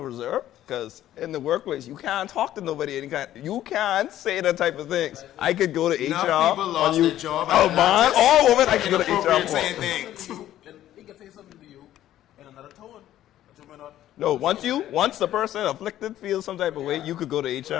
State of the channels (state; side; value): quieter; right; 12.8 dB